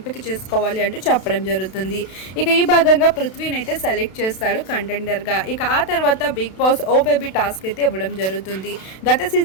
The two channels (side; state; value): right; late; 32 ms